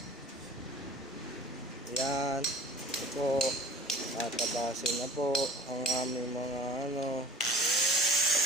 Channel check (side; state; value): both; normal; correlation 0.44